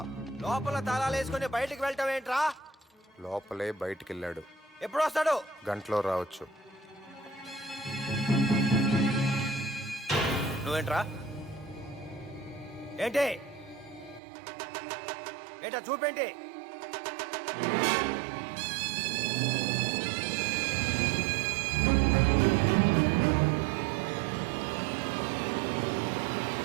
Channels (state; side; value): drops out; left; at 14.2 s